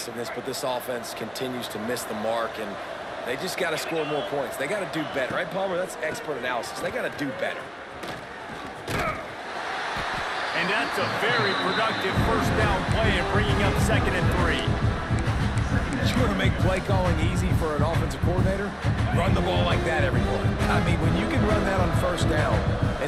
but this offense continues to miss the mark, and they just got to score more points. They got to do better, right, Palmer? That's expert analysis. They got to do better. And that's a very productive 1st down play and bringing up 2nd and 3. You want to make play calling easy for an offensive coordinator? Run the ball like that every play. I mean, when you can run that on 1st down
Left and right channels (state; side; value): identical; both; correlation 1.00